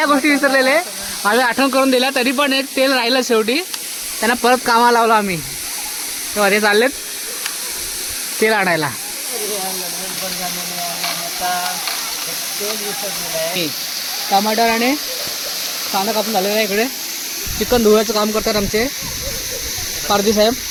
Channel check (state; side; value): identical; both; correlation 1.00